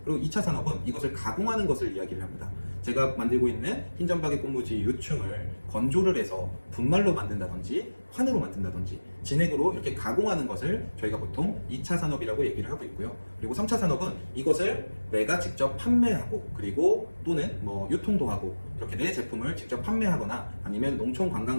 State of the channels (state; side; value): inverted; both; correlation -1.00